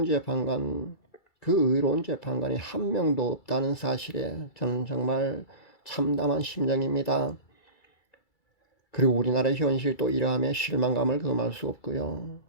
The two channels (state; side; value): late; right; 2.3 ms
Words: 재판관, 그 의로운 재판관이 한 명도 없다는 사실에 저는 정말 참담한 심정입니다. 그리고 우리나라의 현실도 이러함에 실망감을 금할 수 없고요.